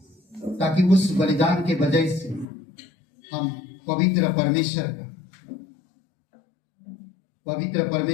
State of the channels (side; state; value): right; drops out; at 2.5 s